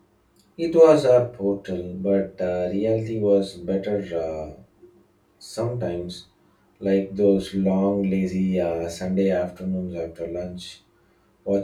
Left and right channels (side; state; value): both; identical; correlation 1.00